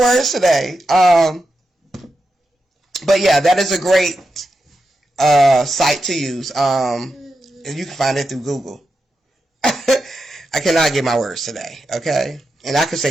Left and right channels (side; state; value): both; normal; correlation 0.88